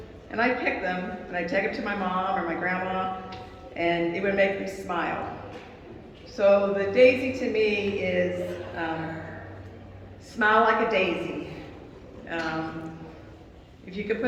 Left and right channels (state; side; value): identical; both; correlation 1.00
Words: and I'd pick them, and I'd take them to my mom or my grandma, and it would make them smile. So the daisy to me is smile like a daisy. If you could